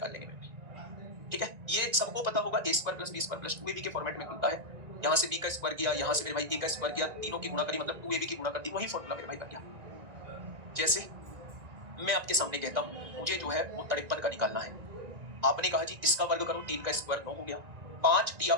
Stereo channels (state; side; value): late; left; 1.9 ms